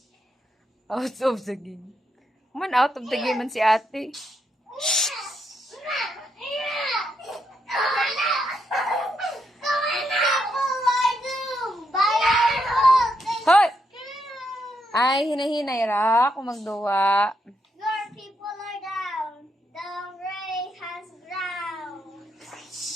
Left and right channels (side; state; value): both; normal; correlation 0.80